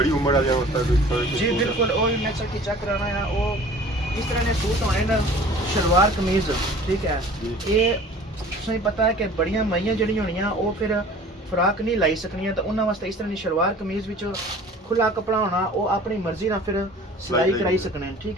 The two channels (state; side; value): normal; both; correlation 0.46